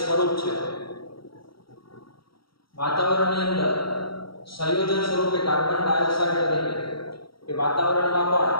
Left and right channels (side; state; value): right; late; 0.74 ms